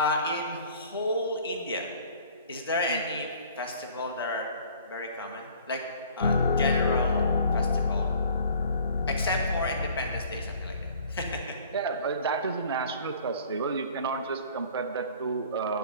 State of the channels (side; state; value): both; inverted; correlation -0.51